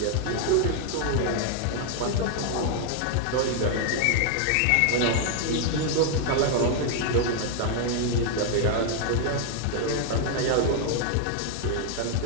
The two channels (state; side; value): different; both; correlation 0.00